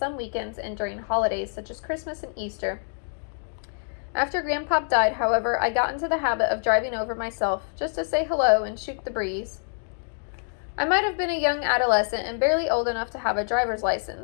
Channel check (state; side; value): silent; right; digital silence